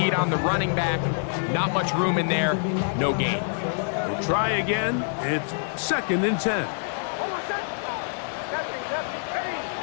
on the running back. Not much room in there. No gain. We'll try again. It's second and 10.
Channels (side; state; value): right; silent; digital silence